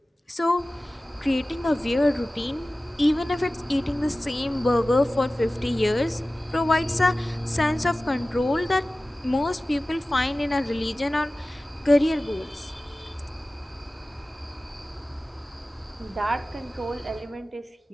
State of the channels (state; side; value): normal; both; correlation 0.97